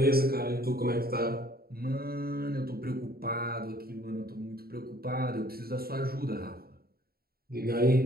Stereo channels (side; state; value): left; late; 0.44 ms